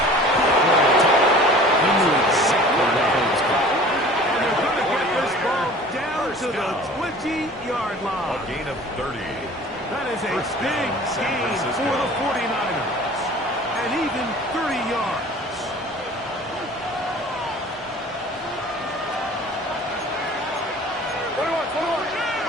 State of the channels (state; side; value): normal; both; correlation 0.45